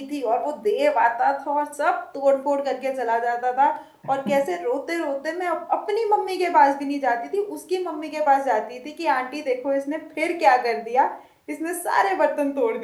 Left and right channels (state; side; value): identical; both; correlation 1.00